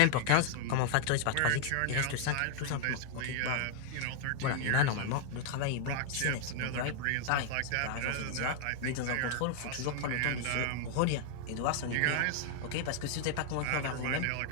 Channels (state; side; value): different; both; correlation 0.00